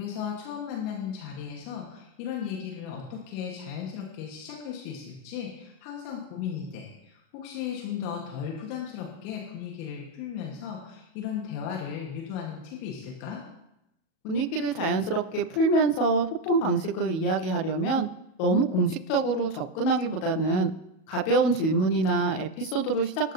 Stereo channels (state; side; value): late; right; 37 ms